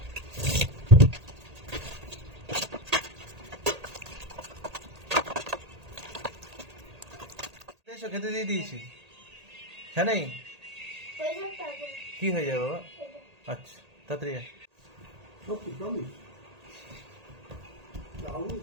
এসো, খেতে দিয়ে দিয়েছি। হ্যাঁ নেই হয়ে যাবে তারপর কি হয়ে যাবে বাবা? এটা। আচ্ছা তাড়াতাড়ি আয়।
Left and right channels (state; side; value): late; left; 1.8 ms